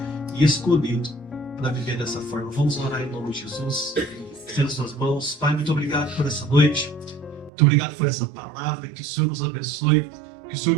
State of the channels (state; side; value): drops out; left; at 7.5 s